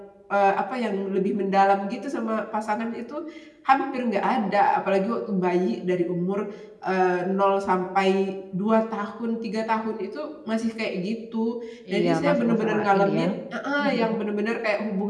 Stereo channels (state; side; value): identical; both; correlation 1.00